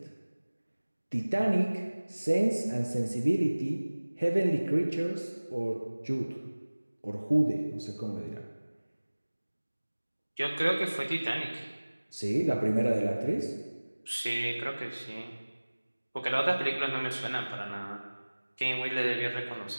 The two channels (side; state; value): both; inverted; correlation -1.00